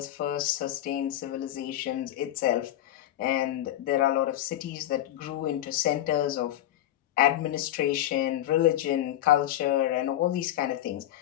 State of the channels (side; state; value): right; quieter; 13.0 dB